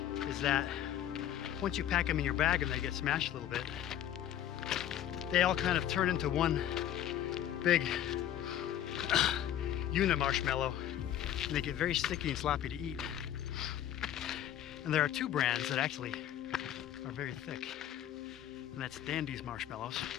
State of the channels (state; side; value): quieter; right; 11.2 dB